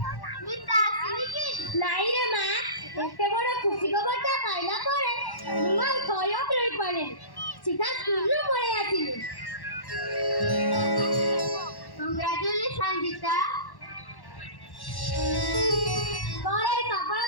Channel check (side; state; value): right; late; 1.1 ms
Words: ନାଇଁ ରେ ମା, ଏତେ ବଡ ଖୁସି ଖବରଟା ପାଇଲା ପରେ ମୁଁ ଆଉ ଧୈର୍ଯ୍ୟ ରହିପାରେନି। ସିଧା ସ୍କୁଲରୁ ପଳେଇ ଆସିଲି। କଂଗ୍ରାଚୁଲେସନ ଜିତା। ମୋର ଏହି